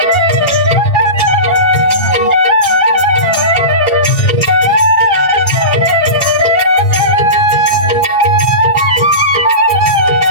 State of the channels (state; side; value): late; right; 2.4 ms